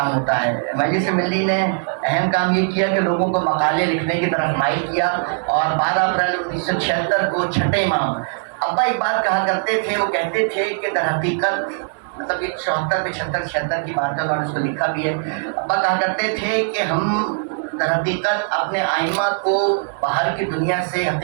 ہوتا ہے. مجلس ملی نے اہم کام یہ کیا کہ لوگوں کو مقالے لکھنے کی طرف مائل کیا اور 12 اپریل 1976 کو چھٹے امام ابا ایک بات کہا کرتے تھے. وہ کہتے تھے کہ در حقیقت مطلب یہ 74 76 کی بات ہے, انہوں نے اس کو لکھا بھی ہے. ابا کہا کرتے تھے کہ ہم در حقیقت اپنے آئمہ کو باہر کی دنیا سے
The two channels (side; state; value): left; silent; digital silence